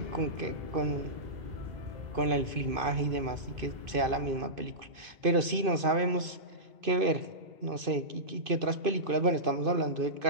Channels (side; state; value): left; late; 2.5 ms